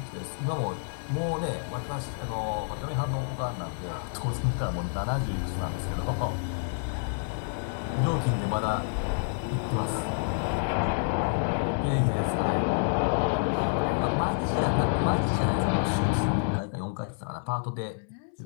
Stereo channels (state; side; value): silent; right; 59 dB below the other